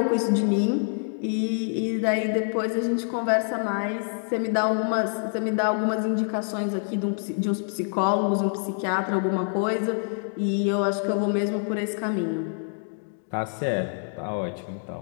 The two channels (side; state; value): right; silent; 61 dB below the other